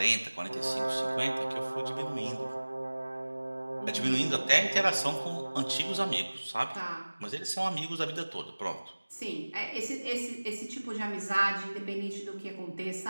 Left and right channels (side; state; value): both; inverted; correlation -1.00